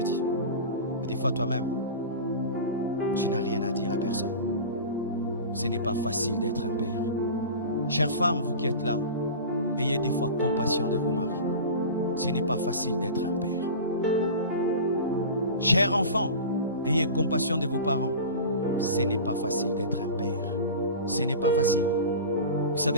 Mais des fois toi-même, tu n'as rien à dire à personne. Ce n'est pas facile d'être un père. Chères femmes, vous qui êtes là, ayez des fois compassion de vos maris. Ce n'est pas facile d'être un père. Chers enfants, ayez compassion de vos parents. Ce n'est pas facile d'être un père. Ce n'est pas facile. Vous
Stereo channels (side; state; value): both; inverted; correlation -0.32